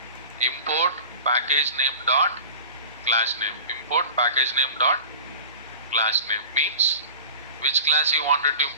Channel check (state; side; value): inverted; both; correlation -0.37